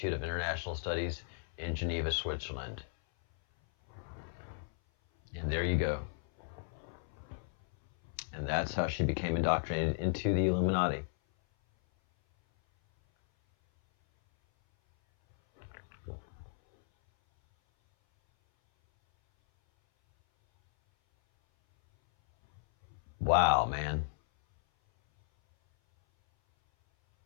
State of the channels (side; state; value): right; silent; 55 dB below the other